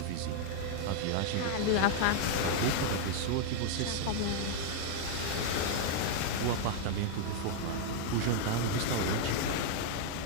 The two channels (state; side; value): different; both; correlation 0.00